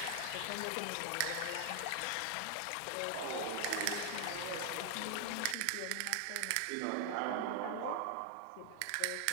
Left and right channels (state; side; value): different; both; correlation 0.00